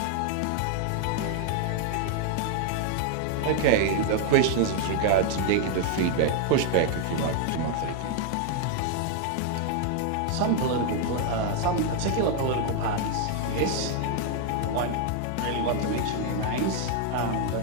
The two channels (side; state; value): both; different; correlation 0.00